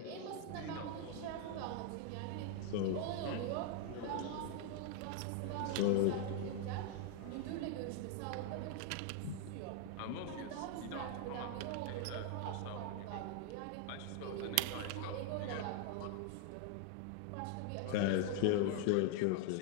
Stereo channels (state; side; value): different; both; correlation 0.00